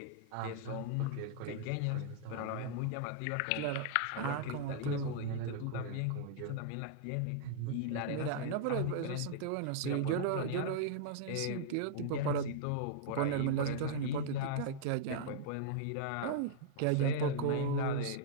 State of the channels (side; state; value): both; different; correlation -0.01